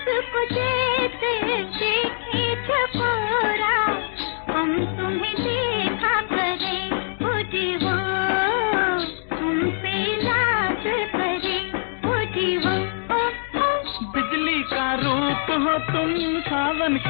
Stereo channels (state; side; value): silent; right; digital silence